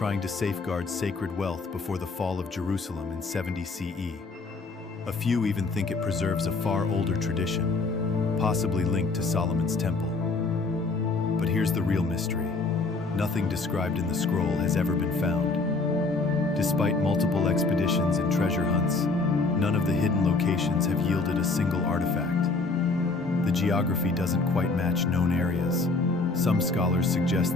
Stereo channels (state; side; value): quieter; right; 3.7 dB